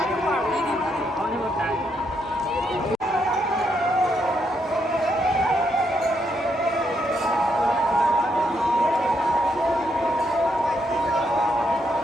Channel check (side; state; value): both; normal; correlation 0.77